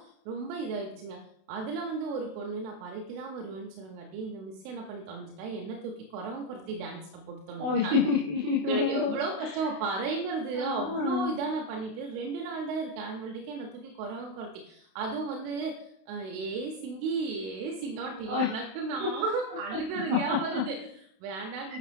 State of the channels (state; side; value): late; left; 32 ms